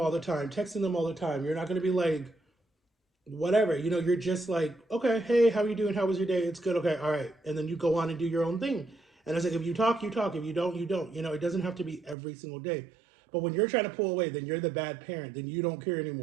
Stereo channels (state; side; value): drops out; left; at 12.2 s